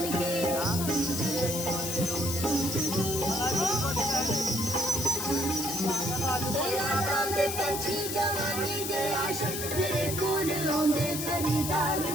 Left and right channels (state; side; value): noise; left; hiss, 4 dB below the sound